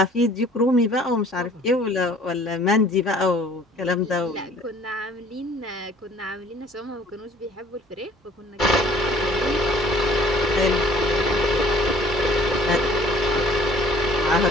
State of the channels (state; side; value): normal; both; correlation 0.55